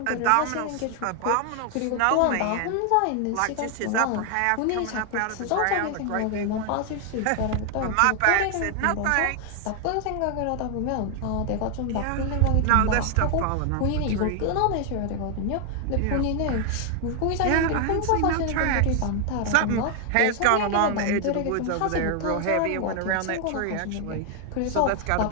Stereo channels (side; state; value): both; different; correlation 0.00